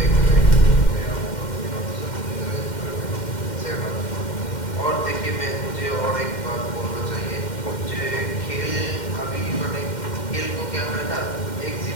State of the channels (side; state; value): right; late; 2.1 ms